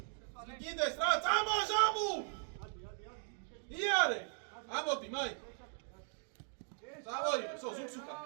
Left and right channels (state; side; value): silent; left; 52 dB below the other